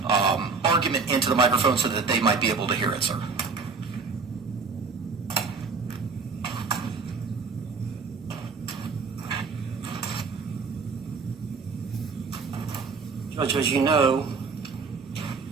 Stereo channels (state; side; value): quieter; left; 4.8 dB